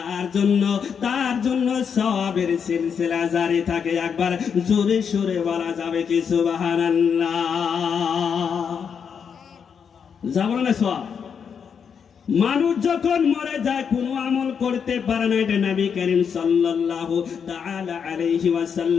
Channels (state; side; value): quieter; right; 6.9 dB